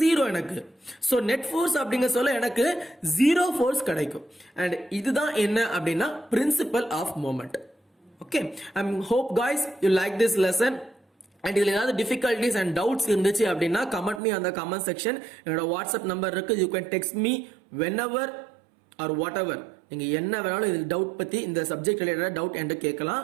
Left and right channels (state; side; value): drops out; left; at 14.2 s